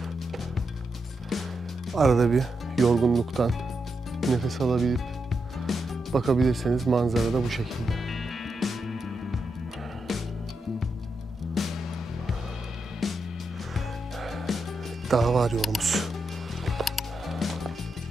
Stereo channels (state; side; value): normal; both; correlation 0.85